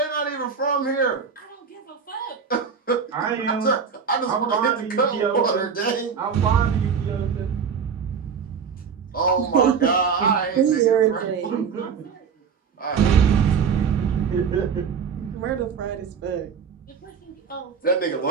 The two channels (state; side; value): quieter; left; 6.4 dB